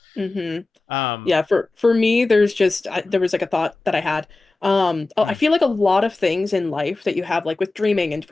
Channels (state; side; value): quieter; right; 3.3 dB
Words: Mm-hmm. um Yeah, for me, there's just there was like a thought that I had. I mm, feel like a lot of things in life that you have like with dreaming and